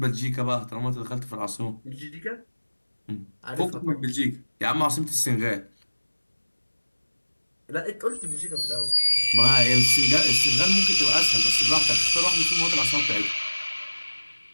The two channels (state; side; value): inverted; both; correlation -1.00